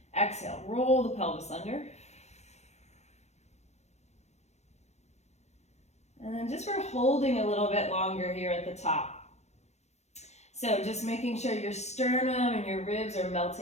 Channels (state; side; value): late; right; 0.32 ms